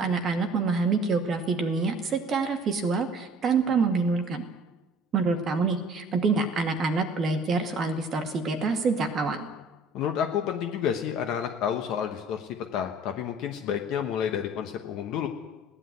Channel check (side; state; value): both; normal; correlation 0.50